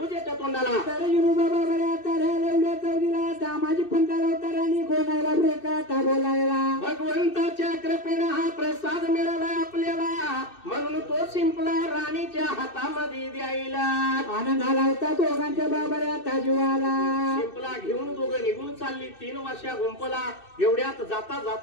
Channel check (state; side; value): late; right; 2.6 ms